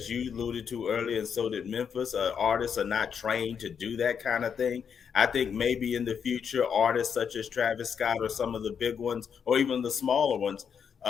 you alluded to earlier, and so did Memphis, artists are not trained to do that kind of thing. I think maybe in the future, artists such as Travis Scott, or some of the big ones, or even the smaller ones,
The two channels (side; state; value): right; quieter; 7.2 dB